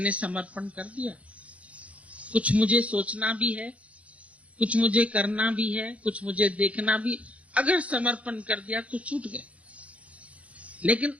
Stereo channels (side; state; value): left; late; 0.065 ms